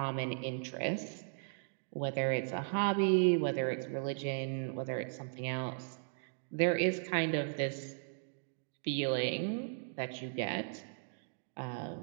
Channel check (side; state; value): left; silent; digital silence